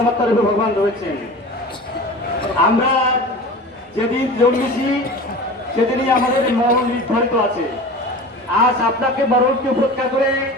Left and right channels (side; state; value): both; normal; correlation 0.35